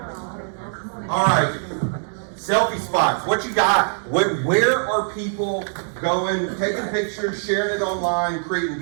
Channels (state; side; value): silent; left; 64 dB below the other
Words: All right. Selfie spots. What you got? Where are people going, taking pictures, sharing it online, creating